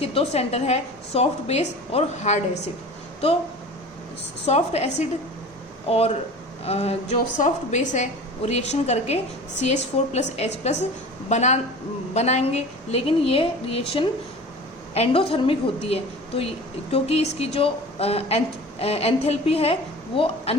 दो सेंटर है, सॉफ्ट बेस और हार्ड एसिड। तो सॉफ्ट एसिड और जो सॉफ्ट बेस है वो रिएक्शन करके CH4+H+ बनाएंगे, लेकिन ये रिएक्शन एंडोथर्मिक होती है। तो क्योंकि इसकी जो एंथैल्पी है वो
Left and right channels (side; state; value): both; normal; correlation 0.38